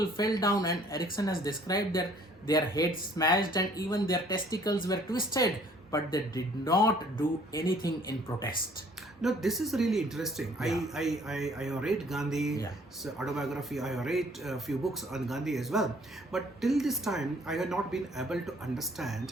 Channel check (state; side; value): normal; both; correlation 0.58